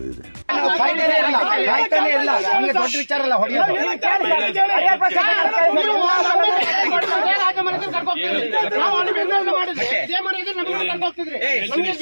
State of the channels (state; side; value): inverted; both; correlation -1.00